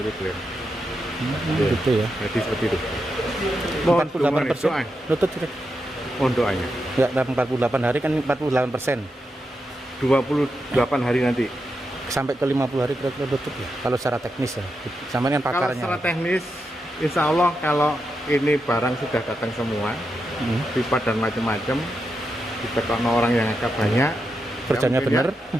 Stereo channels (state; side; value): normal; both; correlation 0.86